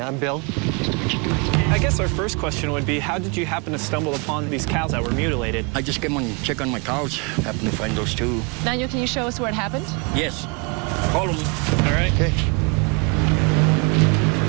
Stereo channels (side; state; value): left; quieter; 32.2 dB